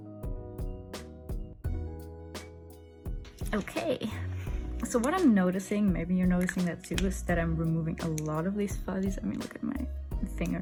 Okay, so what I'm noticing, maybe you're noticing that too, is that I'm removing a lot of these fuzzies. I mean, look at my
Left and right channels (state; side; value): identical; both; correlation 1.00